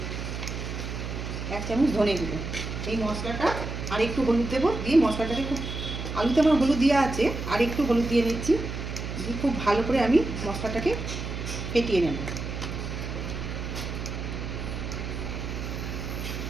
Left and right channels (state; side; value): noise; right; hum, 5 dB below the sound